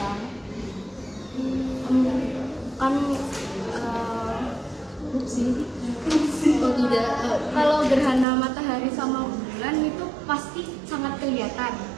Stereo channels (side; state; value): left; drops out; at 8.2 s